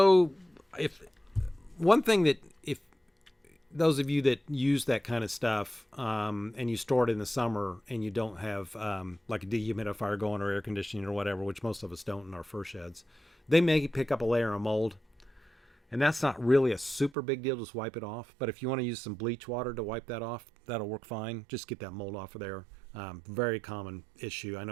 if those of you that use that kind of stuff, and you store it in the summer, and you don't have like a dehumidifier going or air conditioning or whatever, which most of us don't in our fur sheds, they may pick up a layer of mold, and that's not really a super big deal. Just wipe it off. But if you want to use some bleach water to wipe that off, that'll work fine. Just get that mold off of there. Very common issue. I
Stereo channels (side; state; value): left; drops out; at 17.1 s